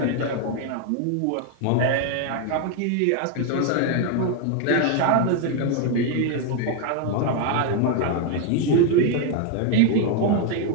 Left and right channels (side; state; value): both; different; correlation 0.01